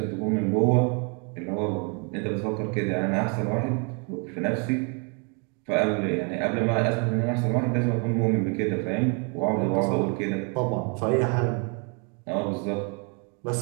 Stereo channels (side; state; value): left; quieter; 36.4 dB